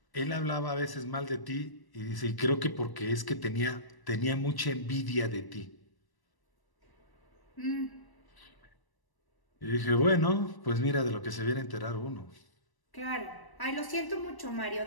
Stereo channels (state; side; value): late; right; 1.1 ms